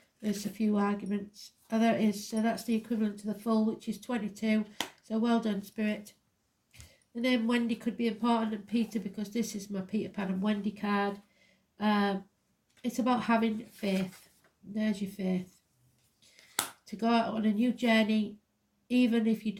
there's a few arguments. Oh, there it is. So that's the equivalent to the full, which is 22. So well done, Spirit. The name Wendy could be important, and Peter, because this is my Peter Pan and Wendy card. It's about having faith. There's your faith. To go out on a new journey, even if you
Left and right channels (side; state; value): both; identical; correlation 1.00